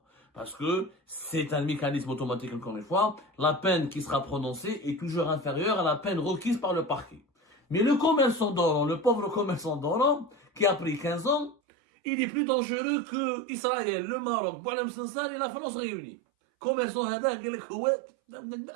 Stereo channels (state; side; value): drops out; left; at 11.6 s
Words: Parce que c'est un mécanisme automatique, encore une fois. La peine qui sera prononcée est toujours inférieure à la peine requise par le parquet. Mais le commerçant d'Oran, le pauvre commerçant d'Oran, qui a pris 15 ans, il est plus dangereux que Israël, le Maroc, Boualem Sansal et la France réunis. Commerçant hada,